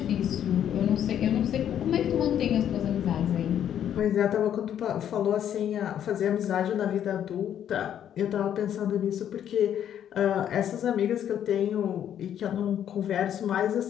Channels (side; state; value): right; quieter; 9.9 dB